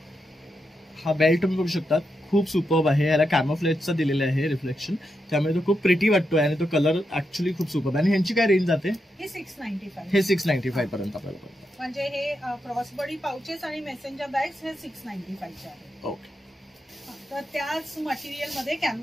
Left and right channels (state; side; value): normal; both; correlation 0.85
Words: हा बेल्ट तुम्ही बघू शकता, खूप सुपर्ब आहे. याला कॅमोफ्लेजचा दिलेला आहे रिफ्लेक्शन, त्यामुळे तो खूप प्रिटी वाटतोय आणि तो कलर ऍक्च्युली खूप सुपर्ब. आणि ह्यांची काय रेंज जाते? हे 695. हे 695 पर्यंत आपल्याला पडतं. म्हणजे हे क्रॉस बॉडी पाउचेस आणि मेसेंजर बॅग्स हे 695 चे आहेत. ओके. तर त्याच मटेरियलमध्ये,